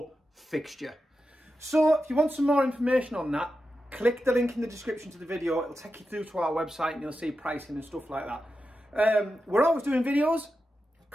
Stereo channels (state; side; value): normal; both; correlation 0.90